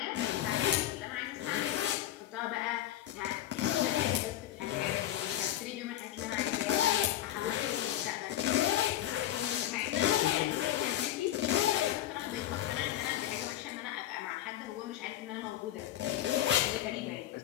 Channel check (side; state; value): right; quieter; 12.7 dB